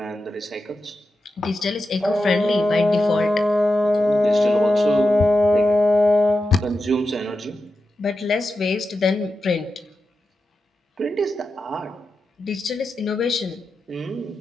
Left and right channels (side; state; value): both; normal; correlation 0.90